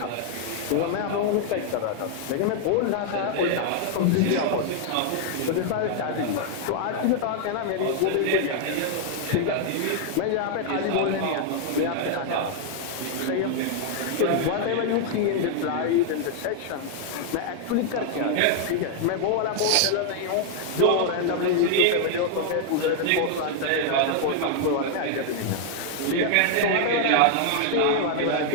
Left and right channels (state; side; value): different; both; correlation 0.00